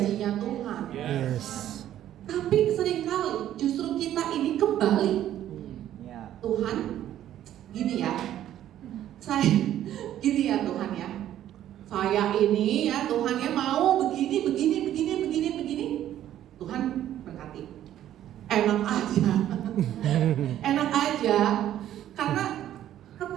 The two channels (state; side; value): quieter; left; 11.9 dB